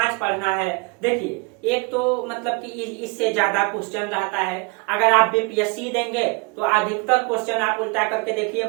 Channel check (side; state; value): left; quieter; 31.1 dB